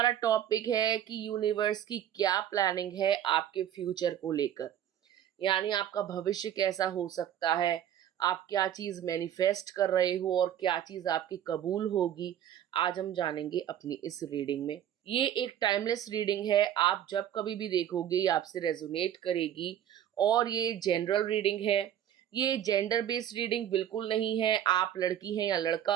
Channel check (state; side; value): quieter; left; 10.6 dB